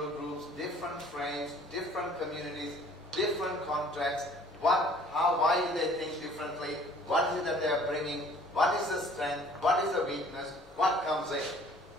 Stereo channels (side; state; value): both; normal; correlation 0.54